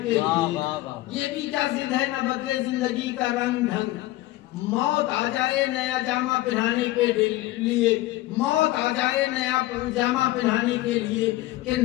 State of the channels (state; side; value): quieter; right; 17.2 dB